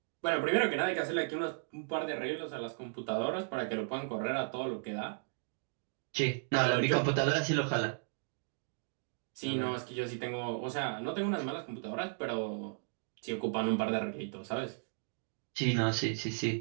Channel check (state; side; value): silent; left; digital silence